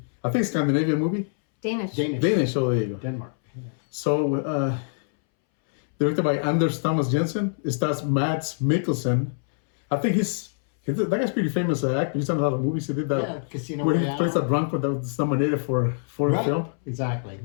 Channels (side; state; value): right; silent; 62 dB below the other